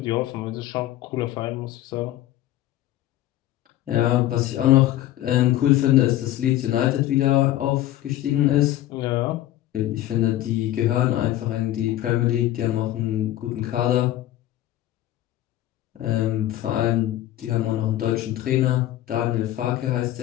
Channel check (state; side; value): quieter; right; 14.0 dB